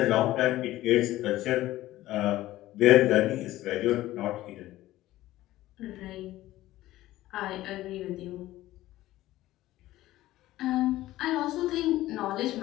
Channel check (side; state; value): right; quieter; 15.8 dB